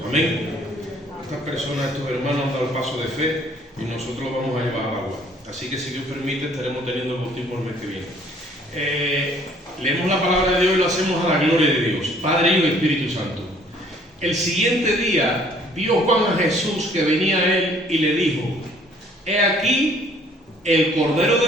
Amén. Estas personas, estos hermanos han dado el paso de fe y nosotros lo vamos a llevar al agua. Así que si Dios permite, estaremos teniendo el bautismo el mes que viene. Leemos la palabra de Dios y lo hacemos a la gloria de Dios, Padre, Hijo y Espíritu Santo. El siguiente día vio Juan a Jesús que venía a él y le dijo: he aquí el Cordero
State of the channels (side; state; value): both; normal; correlation 0.58